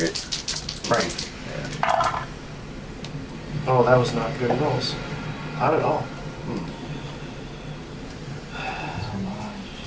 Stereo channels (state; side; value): identical; both; correlation 1.00